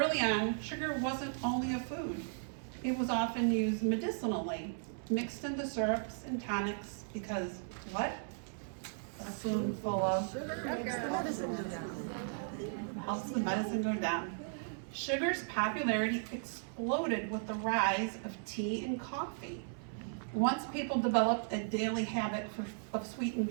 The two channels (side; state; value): left; silent; 54 dB below the other